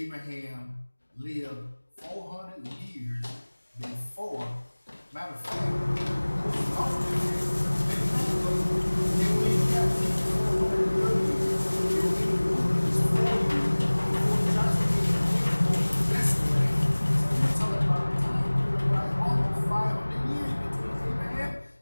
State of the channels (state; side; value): inverted; both; correlation -1.00